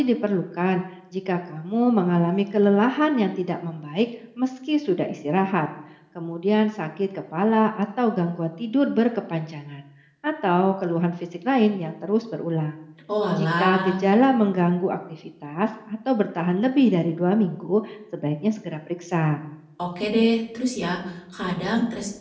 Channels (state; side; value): identical; both; correlation 1.00